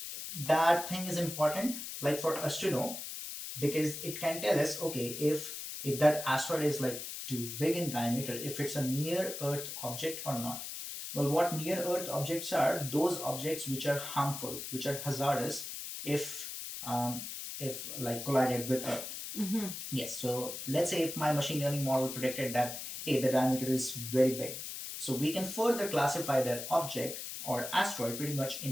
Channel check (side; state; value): left; noise; hiss, 7 dB below the sound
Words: that thing is important, for us to know, because it can tell us, okay, if that asteroid is too big in diameter, if it's a near Earth object or not. Well, what near Earth objects are? Those objects which are harmful, which are hazardous if collided with Earth. Yes. So let's say if my machine learning model predicted that, hey, the diameter is very big, so we can further classify that object or asteroid pretty much